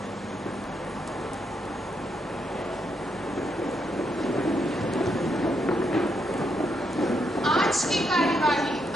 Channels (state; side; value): normal; both; correlation 0.79